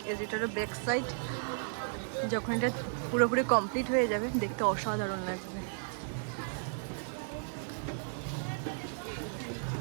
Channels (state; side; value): silent; left; digital silence